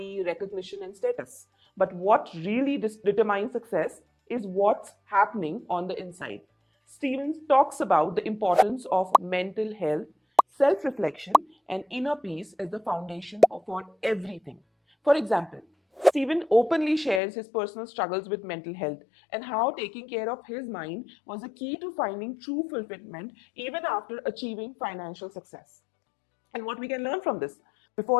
recognition, and status. But what really determines success is what's happening on the inside. Stevens talks about the importance of mental health, self reflection, and inner peace as the foundation for everything. For example, Stephen openly shares his personal struggles with mental health and how taking care of his mind was a key to finding true fulfillment even after achieving financial success. And what we can learn from this:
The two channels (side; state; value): right; drops out; at 17.2 s